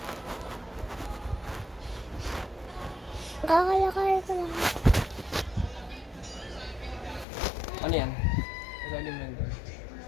Kakalakay ko lang. Ano yan? Ilalim lang doon.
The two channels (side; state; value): right; drops out; at 7.2 s